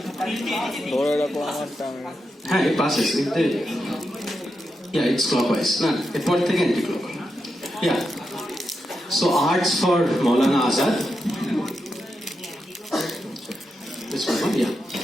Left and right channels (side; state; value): both; normal; correlation 0.86